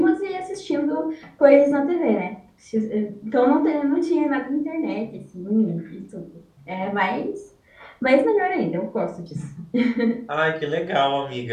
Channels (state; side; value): identical; both; correlation 1.00